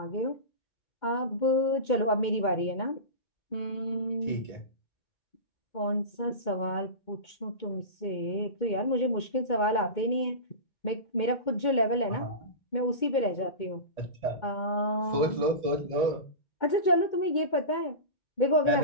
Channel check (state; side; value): late; right; 2.2 ms